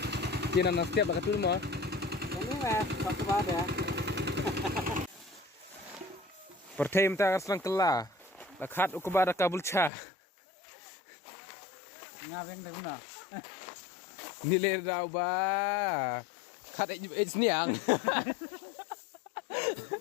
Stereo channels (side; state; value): right; drops out; at 9.9 s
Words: Kina na setiap bakat dulu mah. Ini lah, satu pada. Pertama kita akan kela. Lakat ukubara kabul cha. Ngabeng dah guna. Nilai daw ba? Kat it's niang.